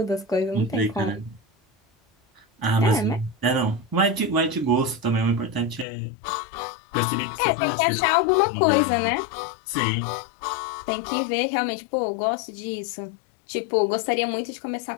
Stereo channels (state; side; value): drops out; right; at 5.9 s